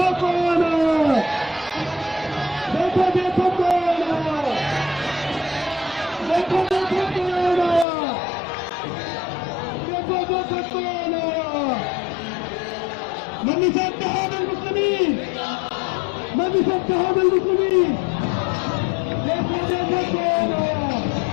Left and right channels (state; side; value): drops out; right; at 7.9 s